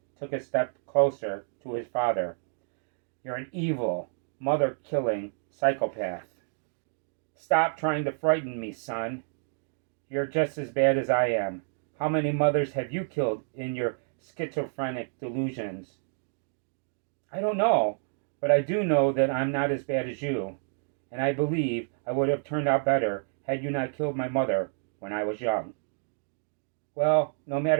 took a step closer to his father. You're an evil, mother-killing psychopath. Stop trying to frighten me, son. You're just as bad as I am. How many mothers have you killed in your schizophrenic delusions? I don't know, but I do know that I'm not as bad as you, and I believe I would have turned out better had you not killed my mother when I was young. Well, no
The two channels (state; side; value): silent; left; digital silence